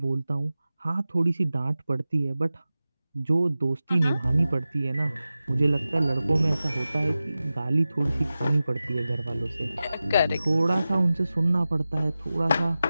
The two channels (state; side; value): inverted; both; correlation -0.95